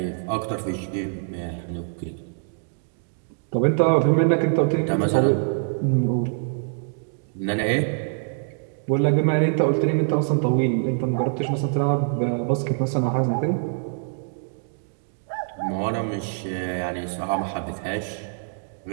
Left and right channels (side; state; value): left; silent; digital silence